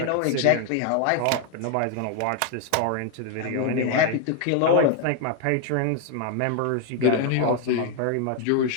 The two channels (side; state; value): both; different; correlation 0.00